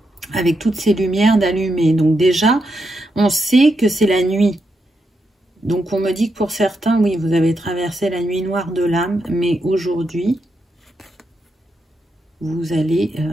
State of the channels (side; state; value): both; normal; correlation 0.83